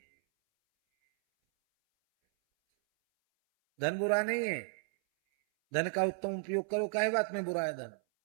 धन बुरा नहीं है, धन का उत्तम उपयोग करो। काहे बात में बुरा है धन?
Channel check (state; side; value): silent; left; 56 dB below the other